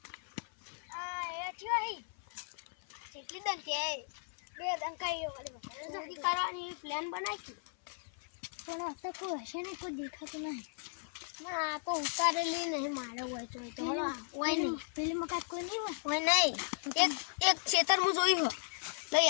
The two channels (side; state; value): right; silent; 54 dB below the other